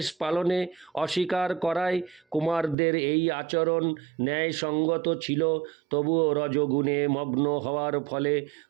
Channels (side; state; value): left; drops out; at 2.8 s